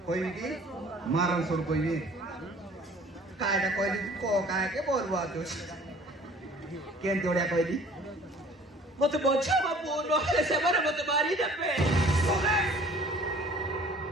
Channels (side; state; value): both; normal; correlation 0.51